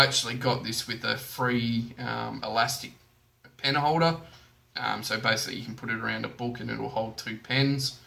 got this with a free elastic pen holder, so basically you can put it around a book and it'll hold two pens.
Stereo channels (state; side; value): identical; both; correlation 1.00